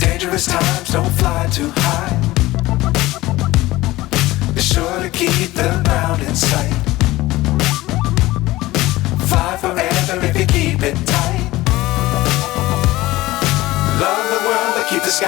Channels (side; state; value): right; quieter; 18.2 dB